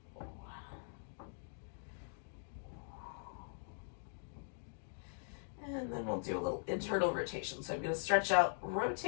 And then we'll do a little internal rotation. So I'm going to stretch out,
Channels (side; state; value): right; silent; digital silence